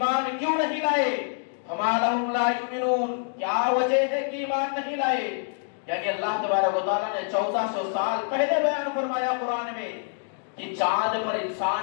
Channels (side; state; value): right; silent; digital silence